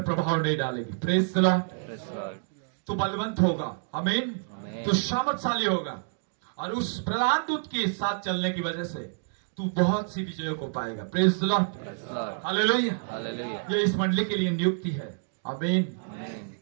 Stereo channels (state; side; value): silent; left; digital silence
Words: प्रभाव नहीं डालेगी। Praise the Lord. Praise the Lord. तू बलवंत होगा। आमीन। आमीन। तू सामर्थशाली होगा और उस प्रधान दूत के साथ चलने की वजह से तू बहुत सी विजयों को पाएगा। Praise the Lord. Praise the Lord. Hallelujah. Hallelujah. ये इस मंडली के लिए नियुक्ति है। आमीन। आमीन।